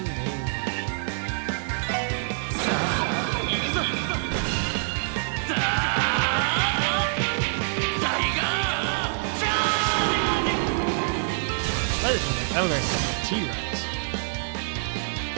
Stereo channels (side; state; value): left; silent; digital silence